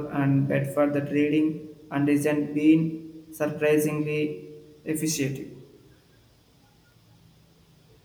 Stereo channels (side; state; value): both; identical; correlation 1.00